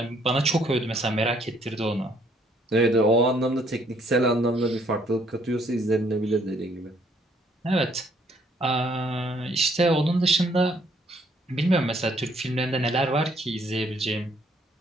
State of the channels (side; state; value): both; normal; correlation 0.66